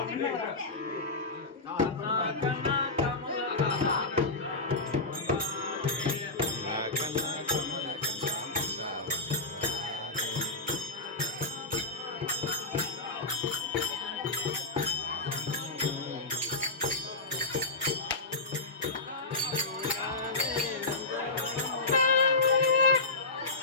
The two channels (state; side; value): quieter; right; 3.3 dB